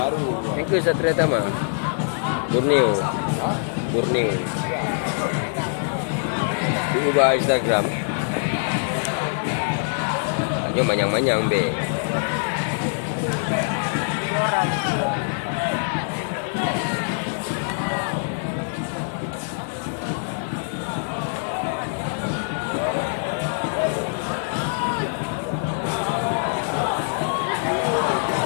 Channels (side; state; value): right; silent; digital silence